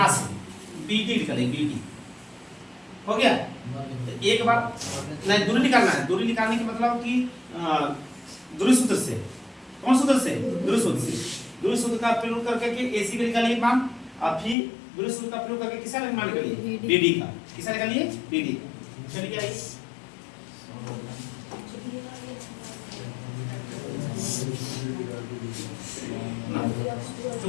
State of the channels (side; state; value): right; drops out; at 14.6 s